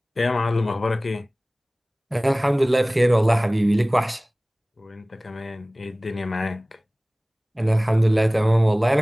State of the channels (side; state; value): both; normal; correlation 0.98